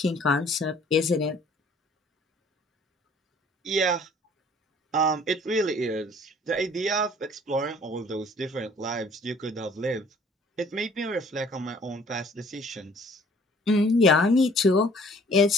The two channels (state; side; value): normal; both; correlation 0.55